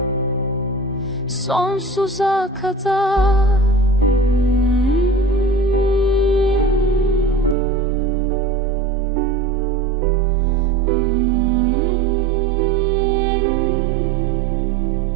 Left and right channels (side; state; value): left; drops out; at 7.6 s